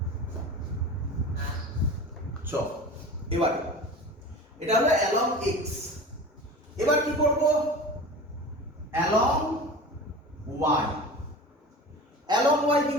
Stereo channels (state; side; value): normal; both; correlation 0.35